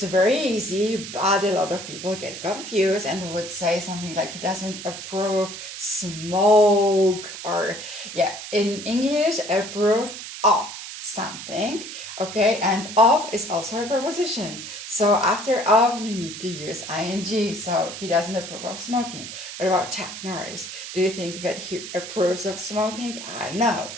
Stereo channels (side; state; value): right; noise; hiss, 10 dB below the sound